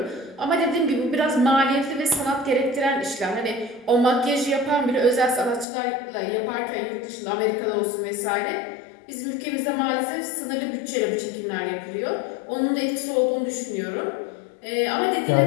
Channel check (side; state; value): right; drops out; at 5.7 s